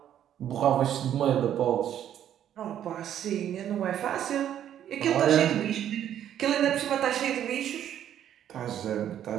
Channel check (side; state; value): left; quieter; 10.5 dB